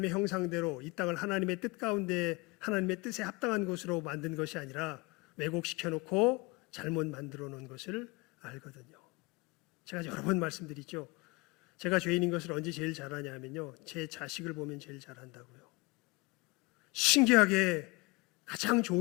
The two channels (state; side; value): quieter; right; 25.4 dB